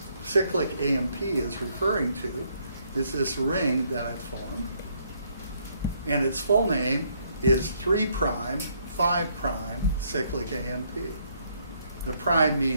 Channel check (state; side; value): inverted; both; correlation -0.70